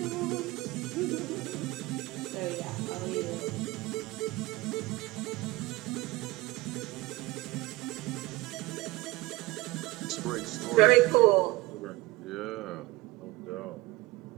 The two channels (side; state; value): left; quieter; 21.1 dB